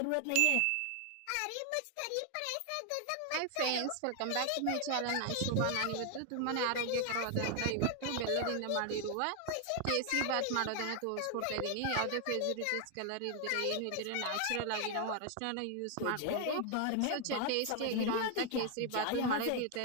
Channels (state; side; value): different; both; correlation 0.00